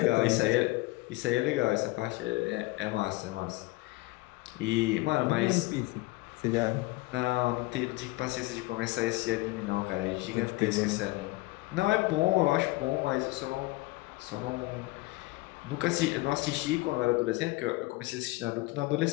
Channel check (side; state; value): right; quieter; 21.0 dB